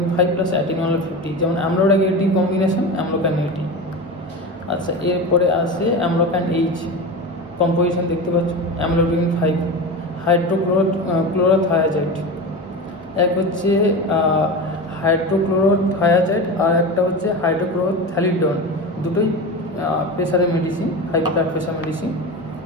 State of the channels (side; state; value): both; normal; correlation 0.26